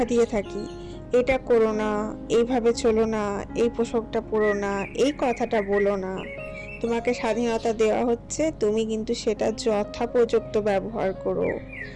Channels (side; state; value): both; identical; correlation 1.00